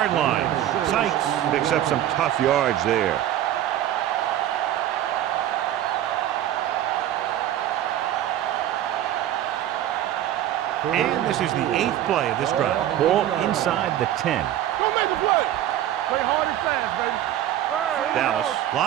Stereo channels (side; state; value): left; quieter; 12.2 dB